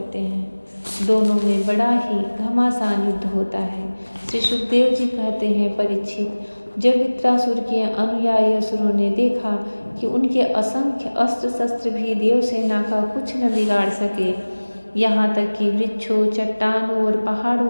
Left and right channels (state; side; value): inverted; both; correlation -1.00